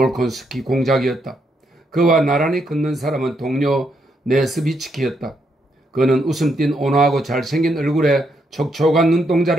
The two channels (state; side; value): normal; both; correlation 0.77